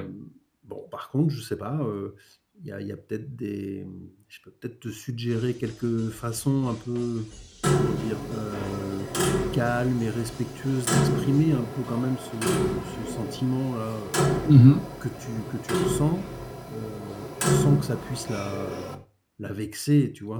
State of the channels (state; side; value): identical; both; correlation 1.00